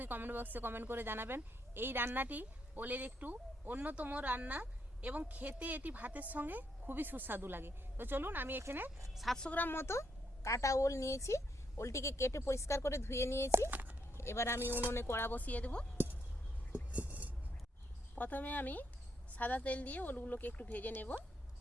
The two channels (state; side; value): normal; both; correlation 0.77